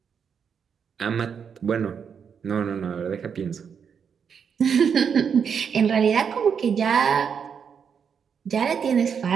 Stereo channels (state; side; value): quieter; left; 7.0 dB